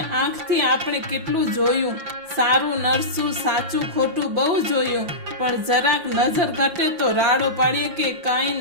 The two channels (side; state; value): left; late; 5.8 ms